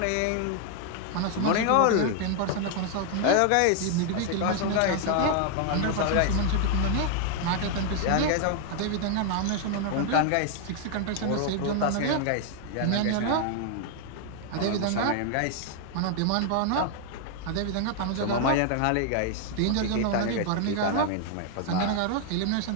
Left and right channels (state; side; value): different; both; correlation 0.00